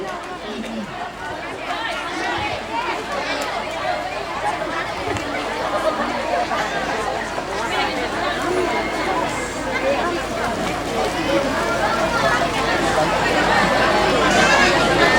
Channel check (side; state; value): both; identical; correlation 1.00